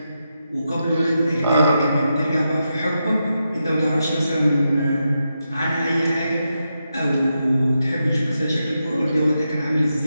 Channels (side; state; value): both; inverted; correlation -0.86